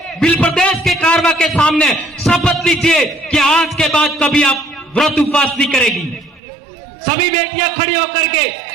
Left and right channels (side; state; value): left; drops out; at 6.4 s